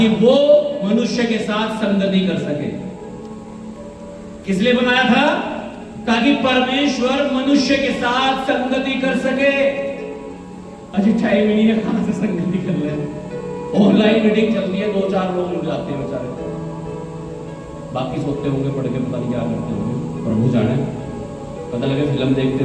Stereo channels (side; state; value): both; identical; correlation 1.00